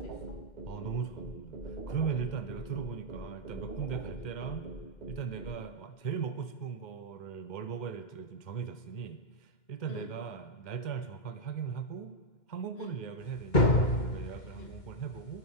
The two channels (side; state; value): right; late; 2.1 ms